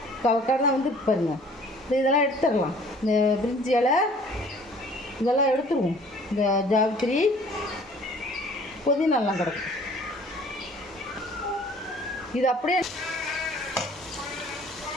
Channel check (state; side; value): normal; both; correlation 0.53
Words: கடை வந்து பாருங்க. இதெல்லாம் எடுத்துடலாம். இந்த பிரிஞ்சி இலை இதெல்லாம் எடுத்துருவோம். இந்த ஜாவித்திரி புதினாலாம் கிடக்கும். இது அப்படியே